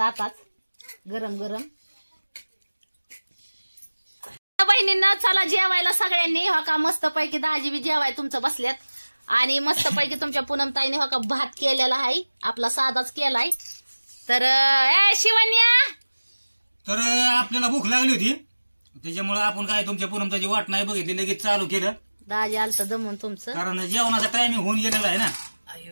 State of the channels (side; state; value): both; inverted; correlation -1.00